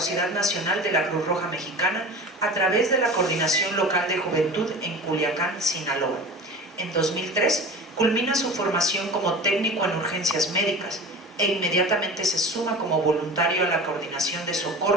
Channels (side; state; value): both; normal; correlation 0.35